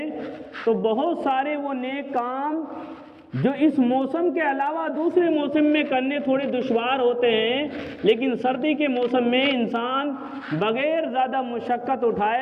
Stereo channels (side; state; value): both; identical; correlation 1.00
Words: تو بہت سارے وہ نیک کام جو اس موسم کے علاوہ دوسرے موسم میں کرنے تھوڑے دشوار ہوتے ہیں، لیکن سردی کے موسم میں انسان بغیر زیادہ مشقت